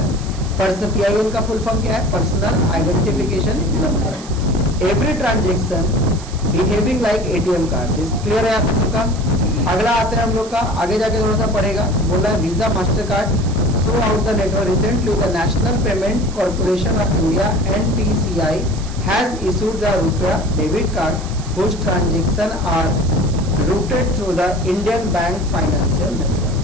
पर्सनल PIN का फुल फॉर्म क्या है, personal identification number. Every transaction behaving like ATM card. This clear है आप सबका। अगला आते हैं हम लोग का, आगे जाके थोड़ा सा पढ़ेगा। बोल रहा है Visa Master card through out the network. Recently the National Payment Corporation of India NPCI has issued the RuPay debit card whose transaction are routed through the Indian Bank Financial Network।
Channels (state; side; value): noise; right; hiss, 17 dB below the sound